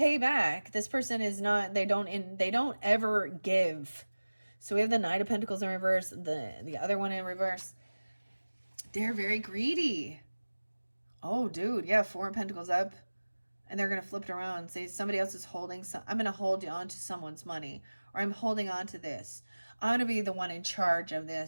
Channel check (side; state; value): both; inverted; correlation -1.00